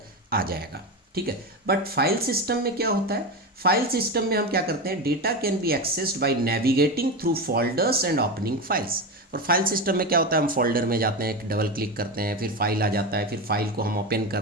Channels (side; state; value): both; normal; correlation 0.19